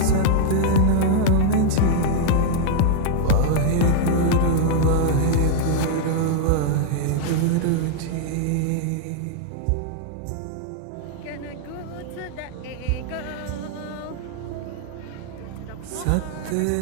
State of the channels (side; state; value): both; different; correlation -0.01